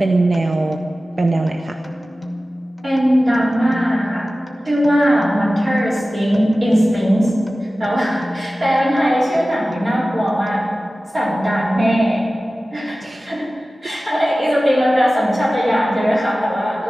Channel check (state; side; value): normal; both; correlation 0.96